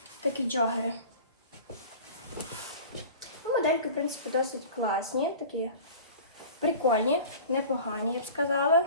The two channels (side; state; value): both; inverted; correlation -0.39